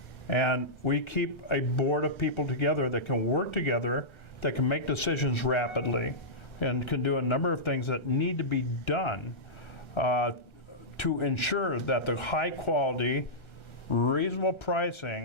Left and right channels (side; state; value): right; late; 1.3 ms